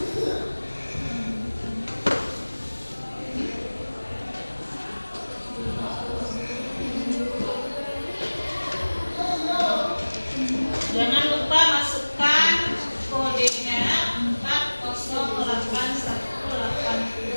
Jangan lupa masukkan kodenya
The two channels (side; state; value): both; inverted; correlation -1.00